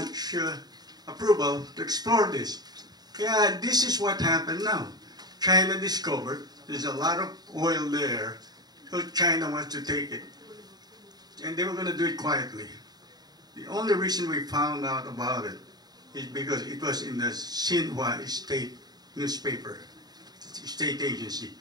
approval to explore this. Yeah, this is what happened now. China discovered there's a lot of oil there, so China wants to take it. And they were going to do it quietly. The only reason we found out about it is because it was in the Xinhua state newspaper, state agency.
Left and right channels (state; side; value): late; left; 0.19 ms